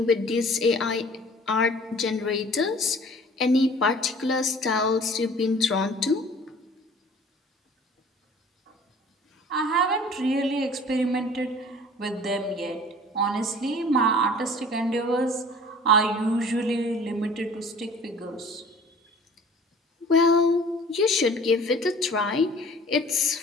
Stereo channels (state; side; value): normal; both; correlation 0.48